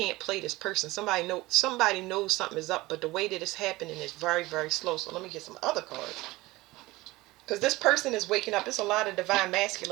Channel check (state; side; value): quieter; left; 19.9 dB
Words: play this person. Somebody knows something is up, but the way that it's happening is very, very slow. So let me get some other cards. Because this person is waking up. There's a lot of divine